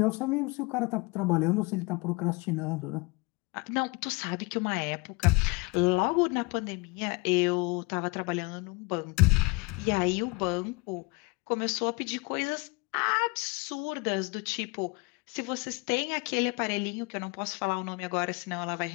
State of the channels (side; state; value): right; quieter; 25.9 dB